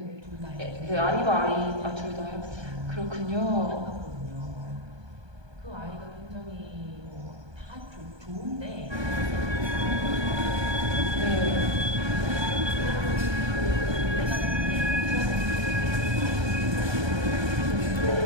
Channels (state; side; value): late; left; 1.2 ms